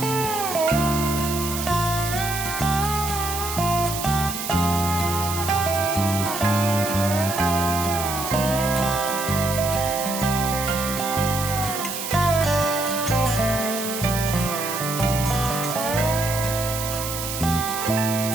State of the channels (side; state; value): right; noise; hiss, 6 dB below the sound